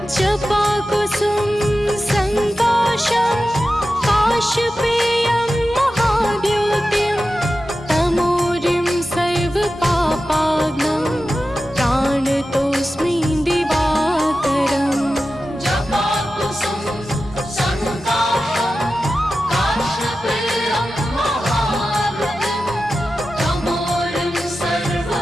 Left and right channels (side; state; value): both; normal; correlation 0.93